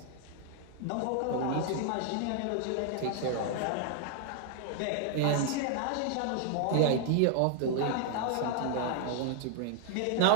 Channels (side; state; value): both; different; correlation 0.00